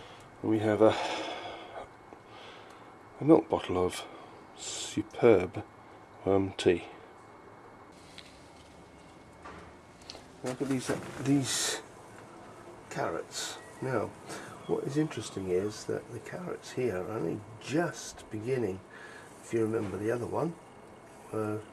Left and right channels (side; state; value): both; identical; correlation 1.00